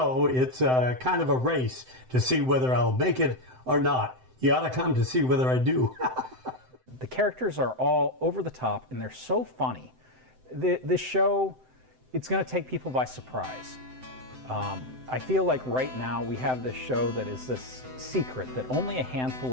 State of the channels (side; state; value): left; late; 7.8 ms